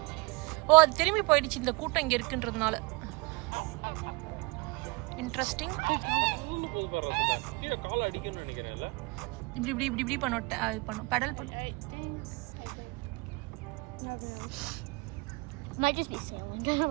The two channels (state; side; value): quieter; left; 25.5 dB